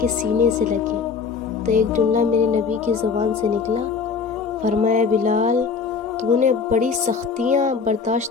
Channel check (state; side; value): quieter; right; 5.5 dB